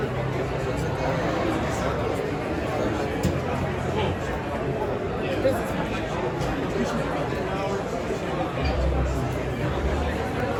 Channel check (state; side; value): identical; both; correlation 1.00